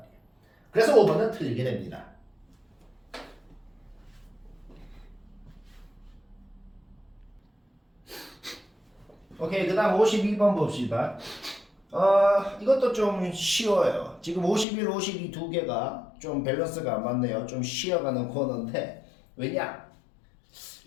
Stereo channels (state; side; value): drops out; right; at 14.7 s